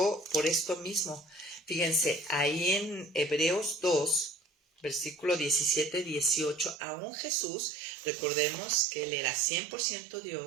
por esto mismo. Fíjense, ahí en Hebreos 2, versículo 17-18, aún Jesús, recordemos que él era 100%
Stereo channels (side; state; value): left; drops out; at 6.8 s